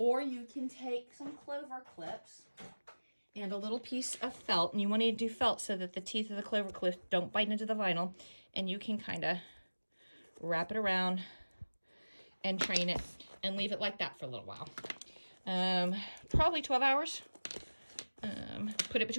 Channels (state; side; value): inverted; both; correlation -1.00